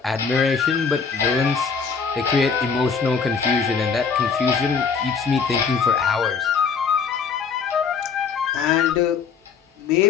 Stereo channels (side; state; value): right; quieter; 5.9 dB